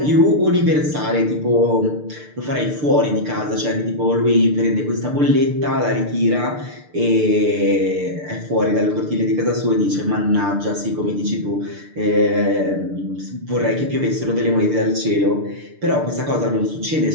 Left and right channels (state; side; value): late; left; 6.7 ms